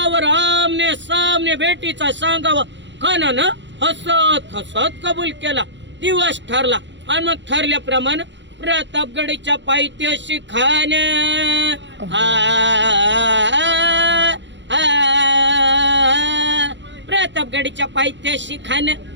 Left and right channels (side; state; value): left; late; 0.53 ms